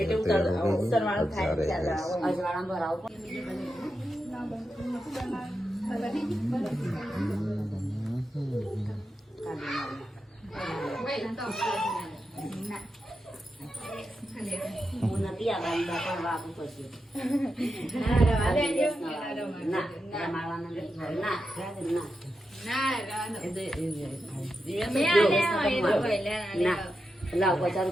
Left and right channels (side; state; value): both; normal; correlation 0.88